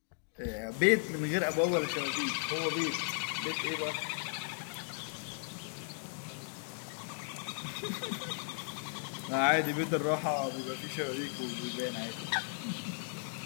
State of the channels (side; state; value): right; silent; digital silence